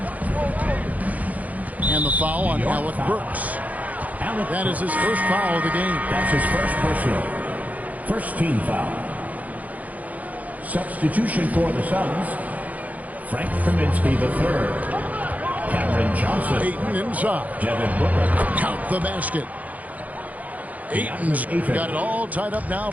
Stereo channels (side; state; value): left; late; 0.075 ms